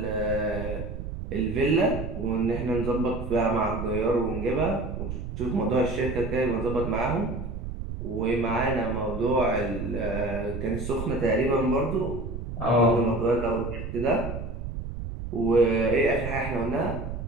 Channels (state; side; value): noise; right; rumble, 7 dB below the sound